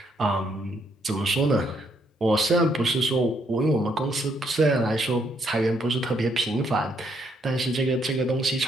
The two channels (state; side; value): normal; both; correlation 0.72